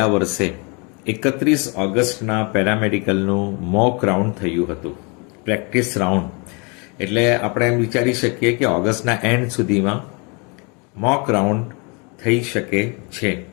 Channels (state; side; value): quieter; right; 32.2 dB